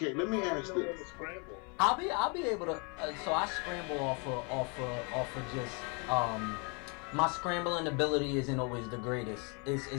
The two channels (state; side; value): quieter; right; 33.7 dB